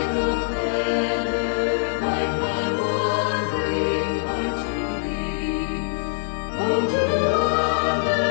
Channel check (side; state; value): right; silent; digital silence